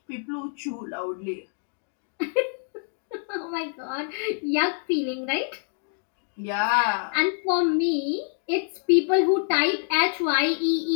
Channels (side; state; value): right; silent; 58 dB below the other